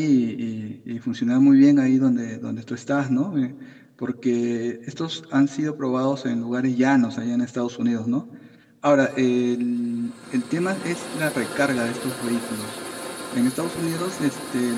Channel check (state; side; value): identical; both; correlation 1.00